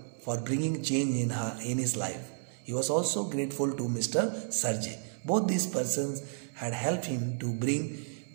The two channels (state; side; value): silent; left; 57 dB below the other